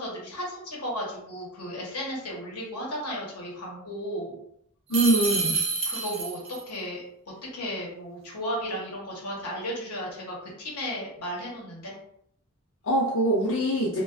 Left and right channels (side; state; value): both; normal; correlation 0.19